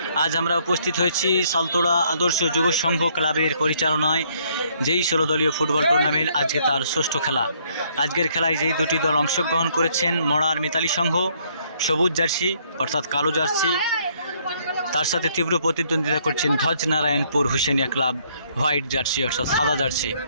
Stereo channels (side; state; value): both; inverted; correlation -0.67